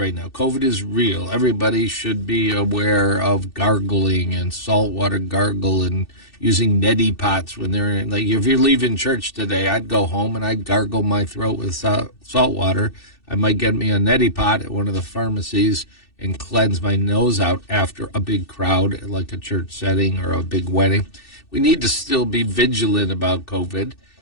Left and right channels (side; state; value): right; late; 2.6 ms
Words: now. COVID is real. Everybody should be aware of gargling and saltwater gargle and using neti pots when they're in, like, if you're leaving church today, I'd go home and I'd gargle my throat with salt water. I might get me a neti pot at one of the pharmacies and cleanse my nose out after a big crowd, like a church setting or a big wedding. We need to still be vigilant about COVID.